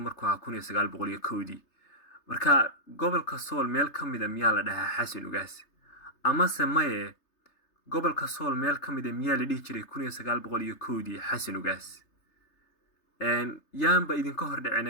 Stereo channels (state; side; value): late; right; 3.3 ms